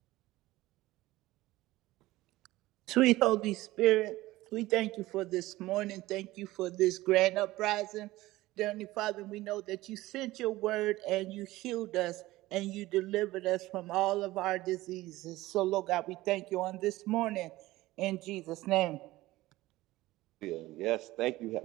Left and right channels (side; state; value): left; quieter; 17.8 dB